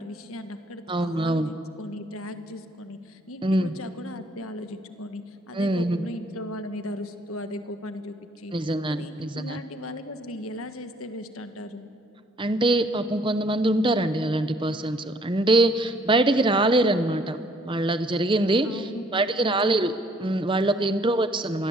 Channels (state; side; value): normal; both; correlation 0.62